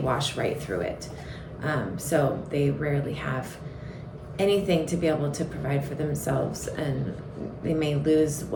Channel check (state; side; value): identical; both; correlation 1.00